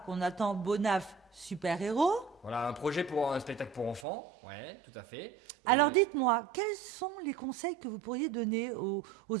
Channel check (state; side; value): drops out; left; at 4.0 s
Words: qu'on attend, Bonaf super-héros. Voilà, un projet pour un spectacle pour enfants, ouais, tout à fait. Alors dites-moi, quels sont les conseils que vous pourriez donner aux